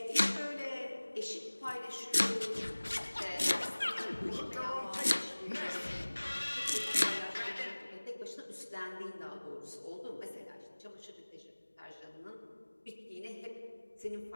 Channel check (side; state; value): both; inverted; correlation -1.00